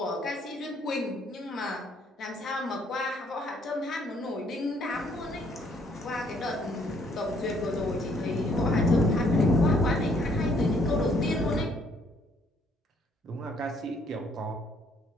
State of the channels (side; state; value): both; normal; correlation 0.66